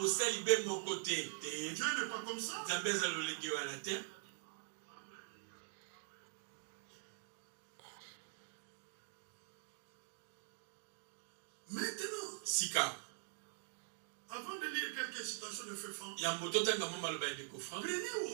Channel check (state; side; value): silent; left; digital silence